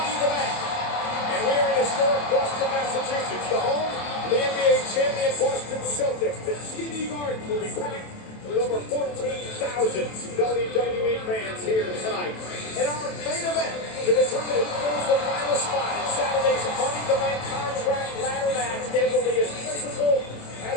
in the Bank. And we are in historic Boston, Massachusetts, the home of the NBA champion Boston Celtics. The TD Garden will be packed with over 14,000 WWE fans here tonight. In our main event, to determine who goes the final spot in Saturday's Money in the Bank contract ladder match, it will be as physical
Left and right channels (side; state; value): right; late; 27 ms